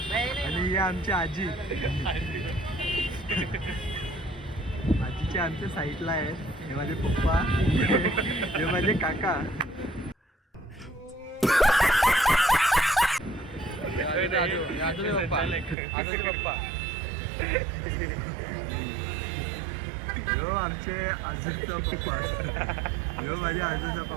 आणि ही आमची आजी. आजीचे आमच्या साईडला आहेत. हे माझे पप्पा, हे माझे काका. यो आमचे आजूचा पप्पा. यो माझ्या आजूचा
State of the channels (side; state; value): left; drops out; at 15.8 s